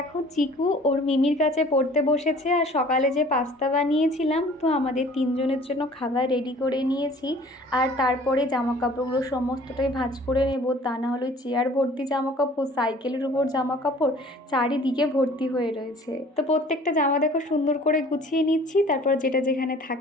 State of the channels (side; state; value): both; normal; correlation 0.50